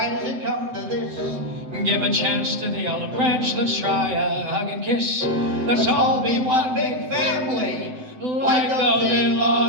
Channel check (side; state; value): left; late; 7.9 ms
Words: does it come to this? Give a chance to the olive branch. Let's try a hug and kiss. Let's all be one big family, like those